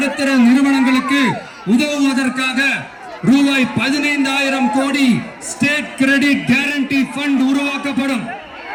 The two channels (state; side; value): identical; both; correlation 1.00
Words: நிறுவனங்களுக்கு உதவுவதற்காக ரூபாய் 15,000 கோடி ஸ்டேட் கிரெடிட் கேரண்டி ஃபண்ட் உருவாக்கப்படும்.